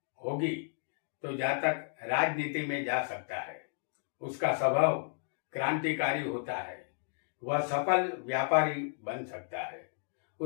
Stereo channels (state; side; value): silent; right; digital silence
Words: होगी तो जातक राजनीति में जा सकता है। उसका स्वभाव क्रांतिकारी होता है। वह सफल व्यापारी बन सकता है।